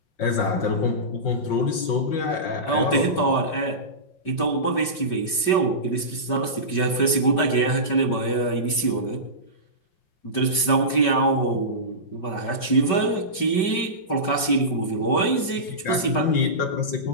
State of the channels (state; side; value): late; right; 5.2 ms